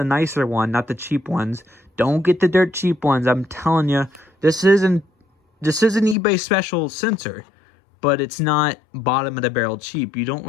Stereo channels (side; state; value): right; drops out; at 6.2 s